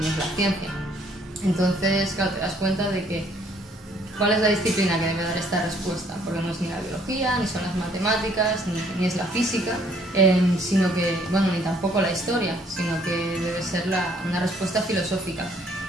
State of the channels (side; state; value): both; normal; correlation 0.63